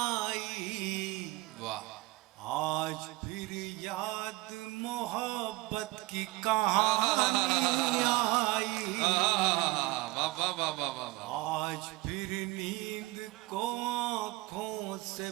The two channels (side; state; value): left; quieter; 20.7 dB